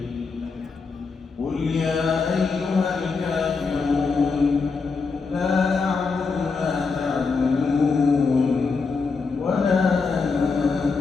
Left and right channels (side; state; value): right; quieter; 4.7 dB